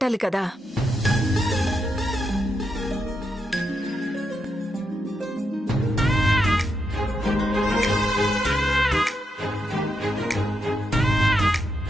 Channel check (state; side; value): normal; both; correlation 0.83